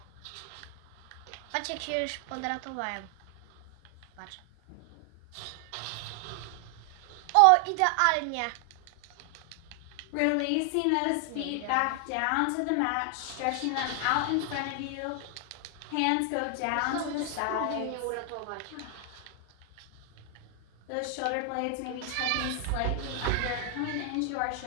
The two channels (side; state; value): both; different; correlation 0.00